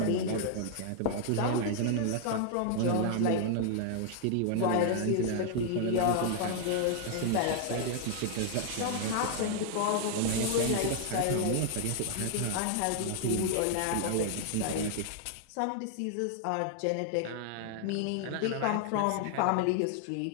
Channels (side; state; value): both; different; correlation 0.00